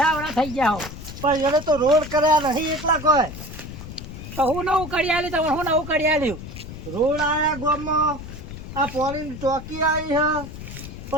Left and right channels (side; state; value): left; noise; rumble, 11 dB below the sound